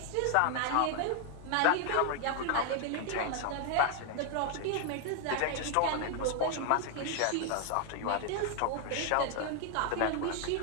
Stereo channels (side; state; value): both; different; correlation 0.00